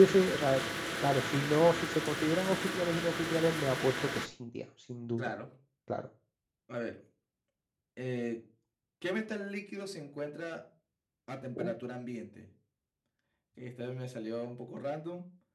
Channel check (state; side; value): identical; both; correlation 1.00